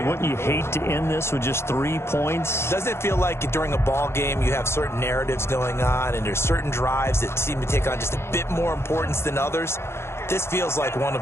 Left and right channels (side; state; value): right; late; 0.12 ms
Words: Wouldn't you hate to end this with just 3 points? Doesn't it feel like during a ball game you have certain narratives going on and there's certain drives that seem to take on just a bit more importance than others? This feels like one